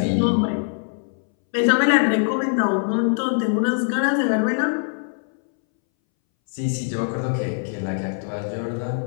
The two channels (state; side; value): silent; right; 62 dB below the other